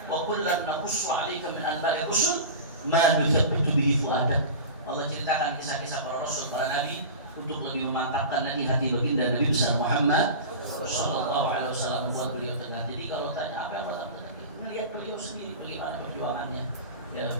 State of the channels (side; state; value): both; inverted; correlation -0.31